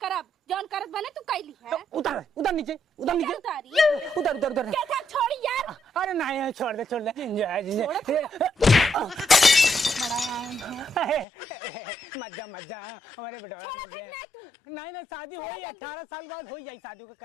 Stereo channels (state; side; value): drops out; right; at 11.2 s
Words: करब, जौन करत बने तू कैली है। उतर नीचे, उतर नीचे, उतारी उतर। क्या था छोड़ी यार। अरे नहीं छोड़ दे मजा हमारे बेटा नहीं शादी हो 18 साल बाद हो जाए शादी को